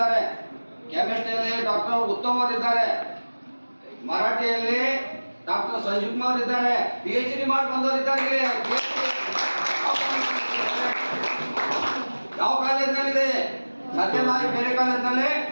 ಕೆಮಿಸ್ಟ್ರಿಯಲ್ಲಿ ಡಾಕ್ಟರ್ ಉತ್ತಮ್ ಅವರು ಇದ್ದಾರೆ, ಮರಾಠಿಯಲ್ಲಿ ಡಾಕ್ಟರ್ ಸಂಜೀವ್ ಕುಮಾರ್ ಇದ್ದಾರೆ, PhD ಮಾಡಿ ಬಂದವರು ಇದ್ದಾರೆ. ಯಾವ ಕಾಲೇಜಿನಲ್ಲಿದೆ? ಸದ್ಯನಾ ಬೇರೆ ಕಾಲೇಜಿನಲ್ಲಿ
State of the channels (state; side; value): inverted; both; correlation -1.00